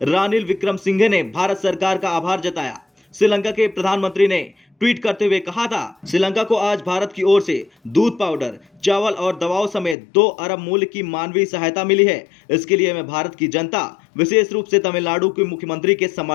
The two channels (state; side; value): drops out; right; at 10.0 s